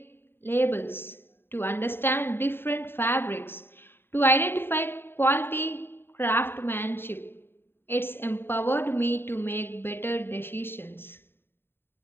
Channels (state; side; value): late; right; 0.11 ms